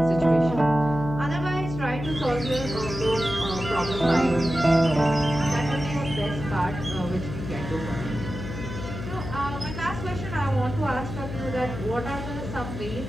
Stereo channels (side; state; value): left; noise; hum, 7 dB below the sound